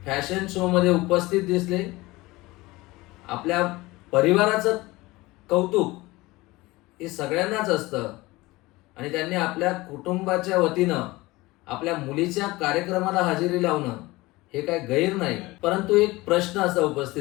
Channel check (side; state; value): right; quieter; 20.7 dB